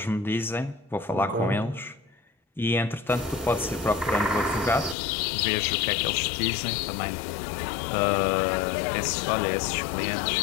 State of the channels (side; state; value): right; drops out; at 5.0 s